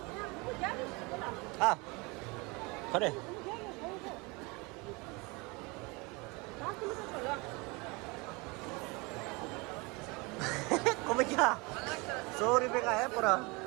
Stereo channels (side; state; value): left; quieter; 27.0 dB